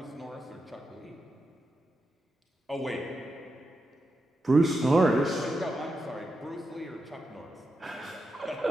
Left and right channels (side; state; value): both; normal; correlation 0.87